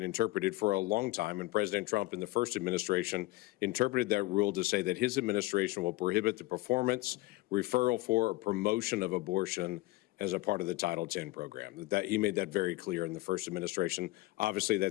interpreted for a long time, and President Trump in the first administration interpreted that rule to say that his administration will prohibit the performance, referral for, or promotion of abortion as a part of the Title 10 program. That he made that very clear in the first administration. Obviously,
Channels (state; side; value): quieter; right; 19.6 dB